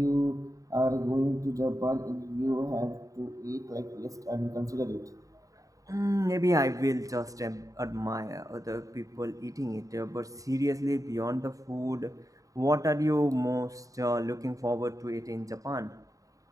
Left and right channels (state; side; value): late; left; 0.16 ms